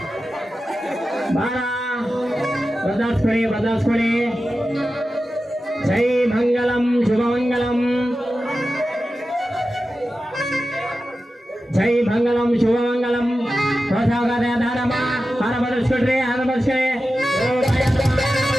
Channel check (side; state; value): both; normal; correlation 0.93